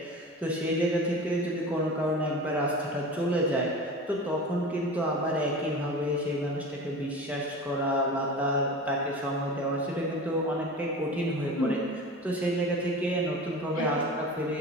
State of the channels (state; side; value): normal; both; correlation 0.33